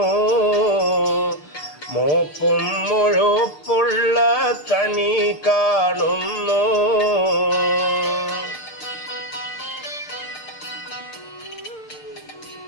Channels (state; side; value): late; right; 6.6 ms